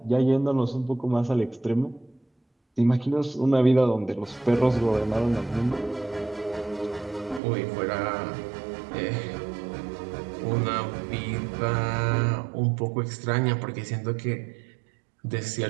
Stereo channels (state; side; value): drops out; left; at 7.4 s